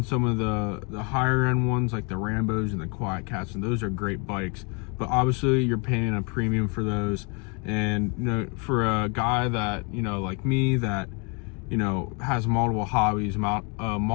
some of the higher end ones like the Rambos and the Quiet Cats, and those are great bikes, but obviously you're paying a premium for those. And you know, for a guy that, you know, like me, that, you know, has multiple hobbies,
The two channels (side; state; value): right; quieter; 33.5 dB